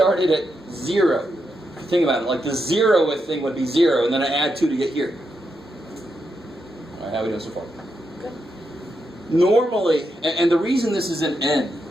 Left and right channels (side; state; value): both; normal; correlation 0.84